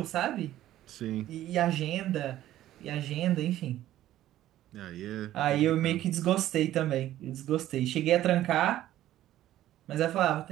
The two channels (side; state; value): left; quieter; 13.5 dB